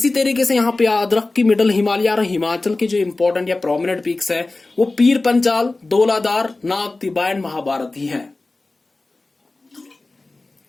तरीके से यहाँ पे याद रख कि मिडल हिमालय और हिमाचल के जो इंपॉर्टेंट या प्रोमिनेंट पीक्स है वो पीर पंचाल, धौलाधार, नाग तिब्बा एंड महाभारत ही है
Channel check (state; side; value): quieter; right; 3.2 dB